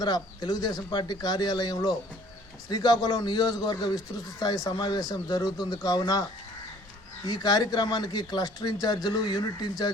తెలుగుదేశం పార్టీ కార్యాలయంలో శ్రీకాకుళం నియోజకవర్గ విస్తృత స్థాయి సమావేశం జరుగుతుంది. కావున ఈ కార్యక్రమానికి క్లస్టర్ ఇన్ఛార్జీలు, యూనిట్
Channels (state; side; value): noise; right; hum, 29 dB below the sound